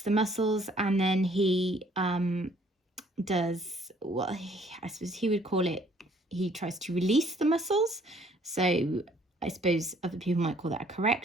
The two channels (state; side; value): normal; both; correlation 0.61